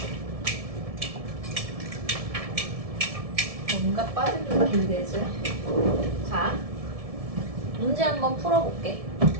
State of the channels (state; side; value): late; left; 1.7 ms